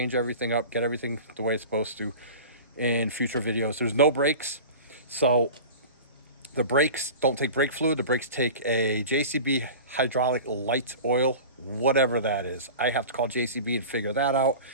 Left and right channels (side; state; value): both; inverted; correlation -0.35